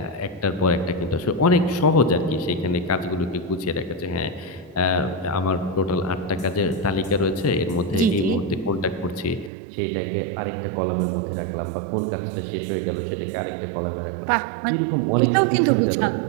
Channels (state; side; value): drops out; left; at 9.5 s